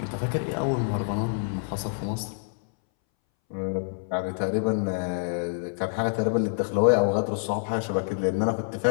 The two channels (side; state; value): right; silent; 60 dB below the other